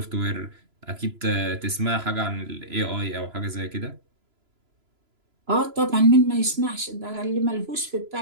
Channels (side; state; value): left; late; 3.0 ms